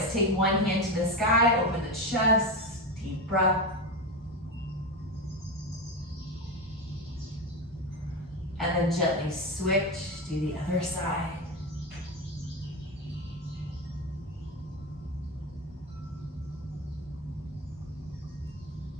Take one hand to the sky, open the chest, deep breath. And then gently switch, do the other side.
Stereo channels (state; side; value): normal; both; correlation 0.17